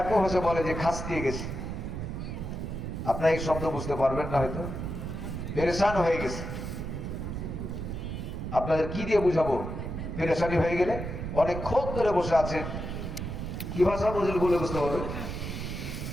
ভাষা বলে যে খাস দিয়ে গেছে। আপনারা এই শব্দ বুঝতে পারবেন না, হয়তো পেরেশান হয়ে গেছে। আপনাদের কি দিয়ে বুঝাবো? পেরেশানি হয়ে গেলে অনেকক্ষণ ধরে বসে আছেন, কি ভাষা বুঝলে বলে বুঝতে পারবেন?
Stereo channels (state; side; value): noise; right; rumble, 5 dB below the sound